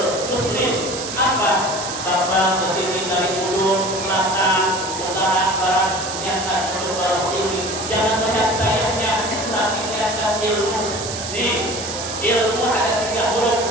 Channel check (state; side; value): noise; right; hiss, 7 dB below the sound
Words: muslim. Apa? Bapak kesini dari ujung, selatan, utara, barat, niatkan untuk barokah ini. Jangan melihat sayangnya, tapi niatkan ilmu. Nih, ilmu ada 3 huruf.